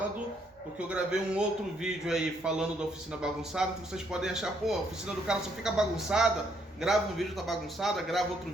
porque eu gravei um outro vídeo aí falando da oficina bagunçada, que vocês podem achar, pô, a oficina do cara só fica bagunçada, grava um vídeo tá bagunçada, grava outro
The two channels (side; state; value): both; normal; correlation 0.71